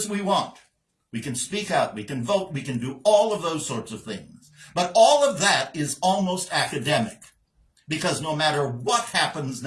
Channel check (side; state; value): both; identical; correlation 1.00